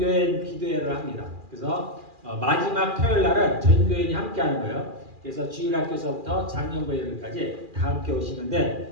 기도회를 합니다. 그래서 마지막 토요일 날은 전교인이 함께 하는 거예요. 그래서 주일학교에서부터 작년부까지 다 함께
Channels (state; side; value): late; left; 2.4 ms